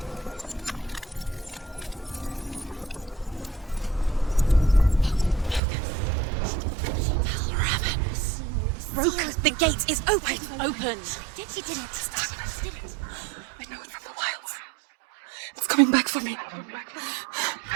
Broke. The gate is open. Open. She did it. I know it from the wilds. It's coming back for me.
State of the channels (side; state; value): left; drops out; at 5.6 s